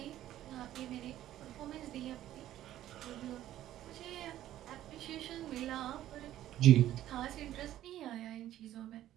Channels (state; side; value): quieter; left; 13.1 dB